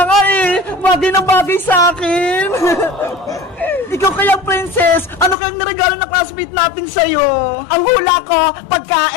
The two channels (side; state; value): right; drops out; at 5.4 s